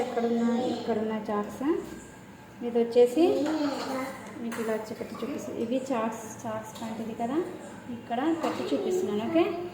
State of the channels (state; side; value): identical; both; correlation 1.00